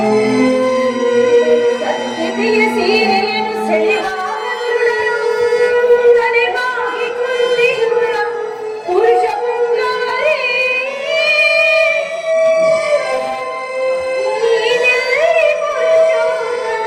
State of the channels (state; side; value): identical; both; correlation 1.00